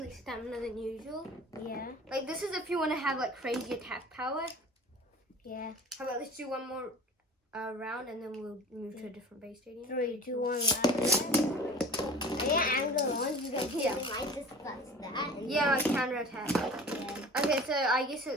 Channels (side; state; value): both; normal; correlation 0.41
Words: stamina than usual. Yeah. Like this is if you want to have like crazy attack power. Yeah. How about let's do one more round, and then we'll move to a different base stadium. 3, 2, 1, yeah, angle on. You guys might discuss that. Yeah, like counter attack. Yeah. Okay, so I guess